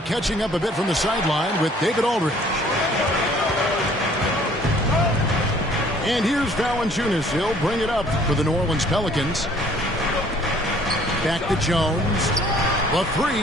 up a bit from the sideline with David Aldridge. And here's Valanciunas. He'll bring it up for the New Orleans Pelicans. Back to Jones. The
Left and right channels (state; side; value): normal; both; correlation 0.57